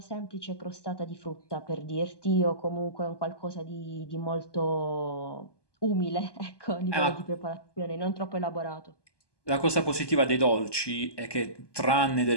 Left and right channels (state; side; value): late; right; 1.2 ms